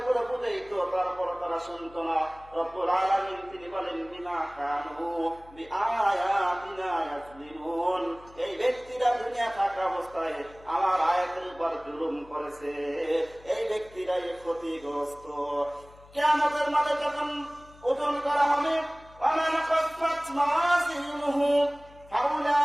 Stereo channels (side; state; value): left; noise; hum, 23 dB below the sound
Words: বুঝাইতো তারপর তারা শুনতো না। রব্বুল আলামিন তিনি বলেন বিমা কানু বিআয়াতিনা ইয়াজলিমুন, এই ব্যক্তিরা দুনিয়া থাকা অবস্থায় আমার আয়াতের উপর জুলুম করেছে, এই ব্যক্তিরাই ক্ষতিগ্রস্ত। কিয়ামতের মাঠে যখন ওজন করা হবে ওয়ামান খাফফাত মাওয়াজিনুহু